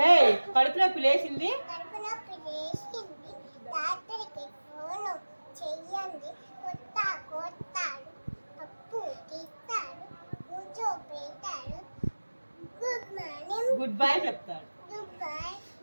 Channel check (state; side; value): inverted; both; correlation -1.00